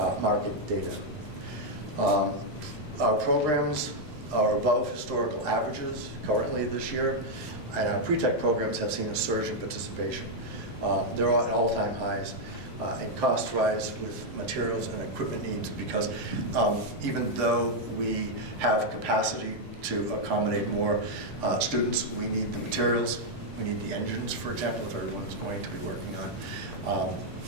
market data. Our programs are above historical averages currently this year, and our pre-tech programs have seen a surge in participation. They're at all-time highs, and costs rise with materials and equipment needs, because even though we have capacity to accommodate more students, we need the materials, we need the engines, for example, if everyone's going to be working on a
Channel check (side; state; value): both; normal; correlation 0.00